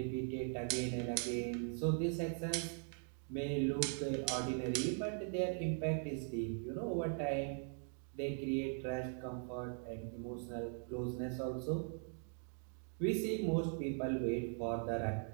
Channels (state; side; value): silent; left; 51 dB below the other